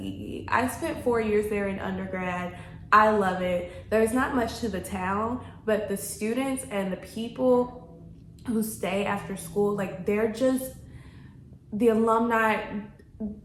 I spent 4 years there in undergrad. I love it. There's not much to the town, but the students and the people who stay after school, like they're just, the alumni,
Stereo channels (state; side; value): identical; both; correlation 1.00